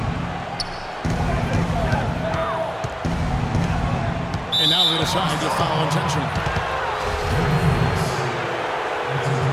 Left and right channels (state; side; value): identical; both; correlation 1.00